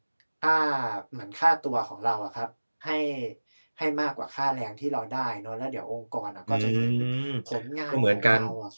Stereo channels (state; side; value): inverted; both; correlation -1.00